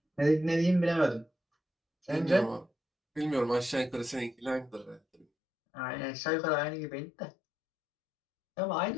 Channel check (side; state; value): right; drops out; at 5.2 s